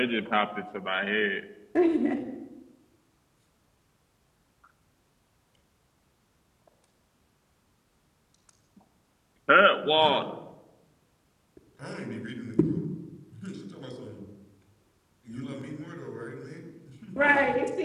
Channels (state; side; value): identical; both; correlation 1.00